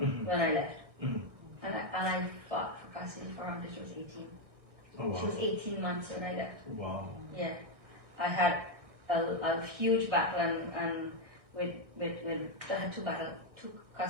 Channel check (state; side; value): late; left; 1.6 ms